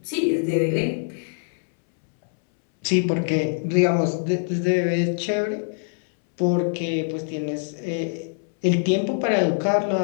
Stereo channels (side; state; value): right; silent; 63 dB below the other